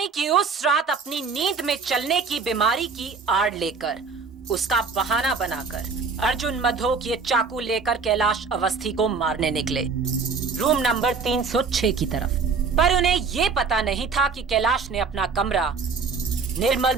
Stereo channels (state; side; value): quieter; left; 5.0 dB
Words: कि उस रात अपनी नींद में चलने की बीमारी की आड़ लेकर, उसका बहाना बनाकर अर्जुन मधोक ये चाकू लेकर कैलाश अवस्थी को मारने निकले, रूम नंबर 306 की तरफ। पर उन्हें ये पता नहीं था कि कैलाश ने अपना कमरा निर्मल